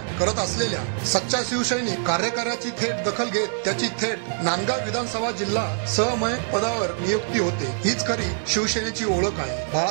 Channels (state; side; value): silent; left; digital silence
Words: करत असलेल्या सच्चा शिवसैनिक कार्यकाऱ्याची थेट दखल घेत त्याची थेट नांदगाव विधानसभा जिल्हा सहमयक पदावर नियुक्ती होते। हीच खरी शिवसेनेची ओळख आहे।